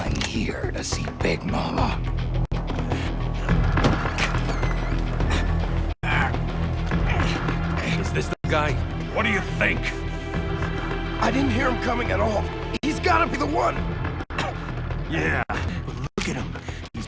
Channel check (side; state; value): both; identical; correlation 1.00